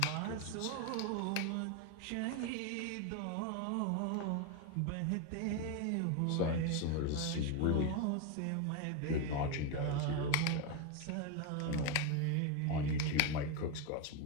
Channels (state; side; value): different; both; correlation 0.02